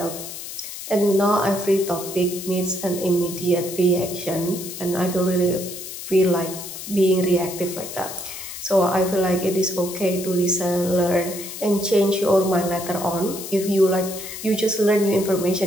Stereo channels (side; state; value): left; noise; hiss, 10 dB below the sound